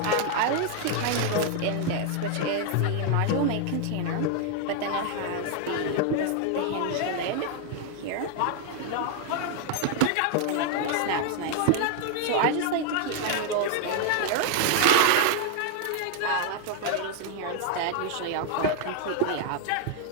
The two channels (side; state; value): both; different; correlation 0.00